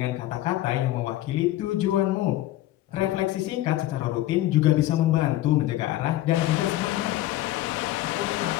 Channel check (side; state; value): right; quieter; 15.2 dB